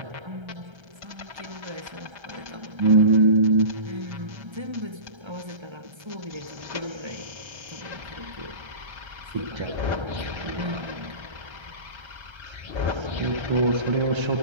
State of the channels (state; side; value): late; left; 1.3 ms